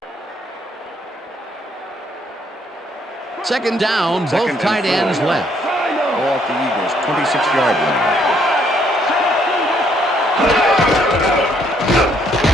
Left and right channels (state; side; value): normal; both; correlation 0.69